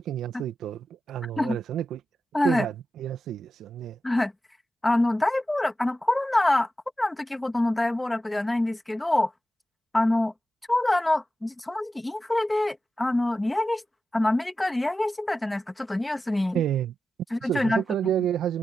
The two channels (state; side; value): normal; both; correlation 0.92